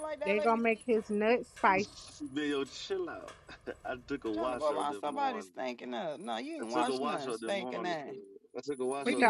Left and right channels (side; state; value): both; identical; correlation 1.00